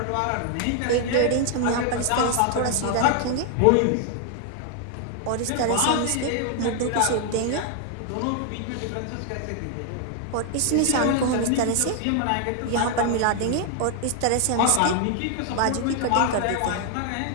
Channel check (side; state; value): both; different; correlation 0.00